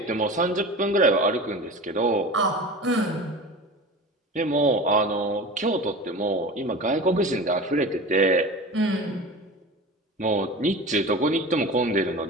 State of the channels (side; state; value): both; normal; correlation 0.33